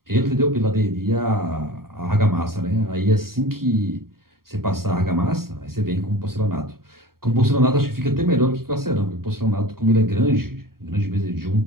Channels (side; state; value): left; late; 0.93 ms